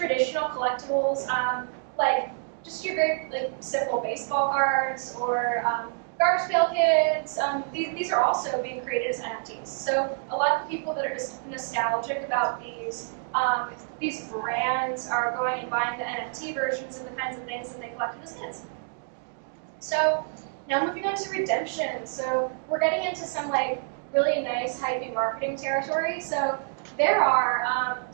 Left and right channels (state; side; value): silent; left; digital silence